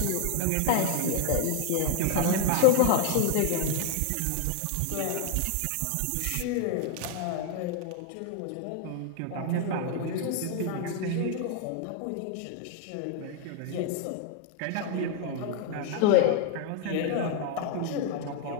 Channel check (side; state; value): both; different; correlation 0.00